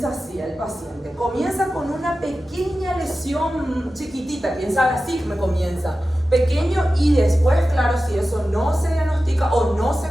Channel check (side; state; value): both; normal; correlation 0.94